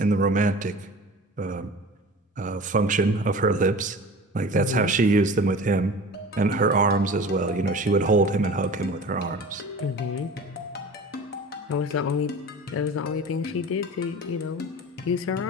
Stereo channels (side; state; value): both; normal; correlation 0.39